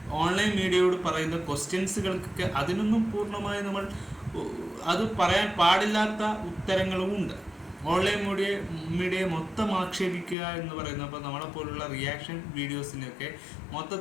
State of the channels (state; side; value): drops out; right; at 10.4 s